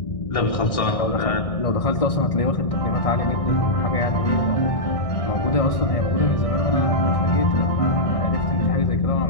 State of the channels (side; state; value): right; late; 1.6 ms